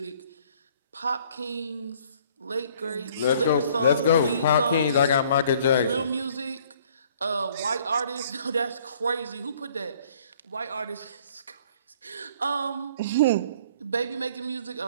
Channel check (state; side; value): inverted; both; correlation -0.58